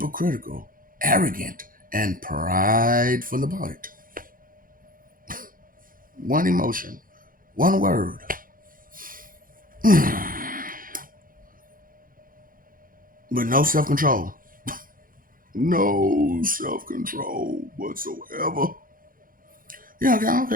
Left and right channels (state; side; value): late; left; 0.41 ms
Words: arrogant, and prideful about it. One emotion, one word. But no self control. No self control whatsoever. Yeah, okay, I don't